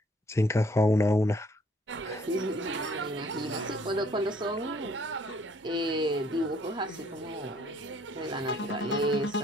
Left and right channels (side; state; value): both; normal; correlation 0.62